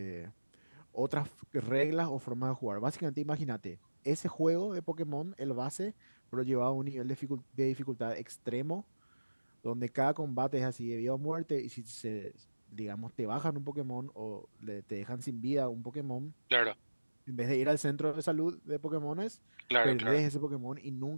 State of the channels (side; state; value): both; inverted; correlation -1.00